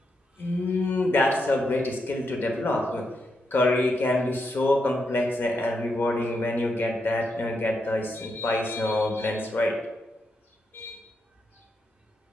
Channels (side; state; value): both; normal; correlation 0.82